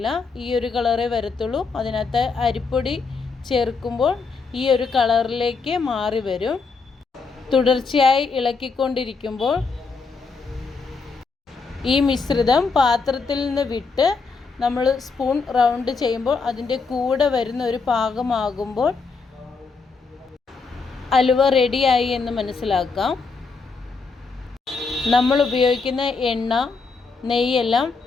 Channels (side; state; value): right; quieter; 4.6 dB